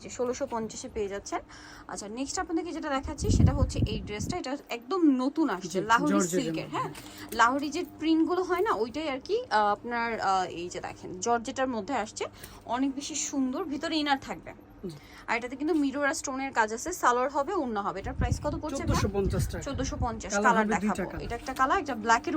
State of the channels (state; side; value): identical; both; correlation 1.00